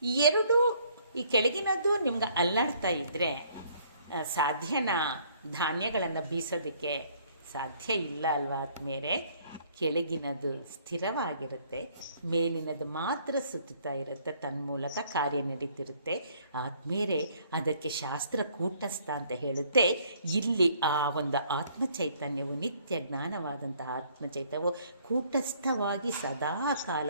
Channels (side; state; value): both; inverted; correlation -0.62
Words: ಈ ಕೆಳಗಿನದು ನಿಮ್ಗೆ ಅಲ್ಲಾಡ್ತಾ ಇದ್ದರೆ ಸಾಧ್ಯನಾ ಧಾನ್ಯಗಳನ್ನು ಬೀಸೋದಕ್ಕೆ? ಸಾಧ್ಯ ಇಲ್ಲ ಅಲ್ವಾ ಆದ್ಮೇಲೆ. ಕೆಳಗಿನದು ಸ್ಥಿರವಾಗಿರುತ್ತೆ, ಮೇಲಿನದು ಮಾತ್ರ ಸುತ್ತುತ್ತಾ ಇರುತ್ತೆ, ತನ್ಮೂಲಕ ಕಾರ್ಯ ನಡೀತಿರುತ್ತೆ. ಆದ್ಮೇಲೆ ಅದಕ್ಕೆ ಶಾಸ್ತ್ರ ಕೂಟಸ್ಥ ಅಂತ ಹೇಳುತ್ತೆ. ಇಲ್ಲಿ ಆ ಒಂದು ಆತ್ಮಚೈತನ್ಯವು, ನಿತ್ಯ ಜ್ಞಾನವಾದಂತಹ ಆತ್ಮಚೈತನ್ಯವು ಕೂಟಸ್ಥವಾಗಿ ಸದಾಕಾಲ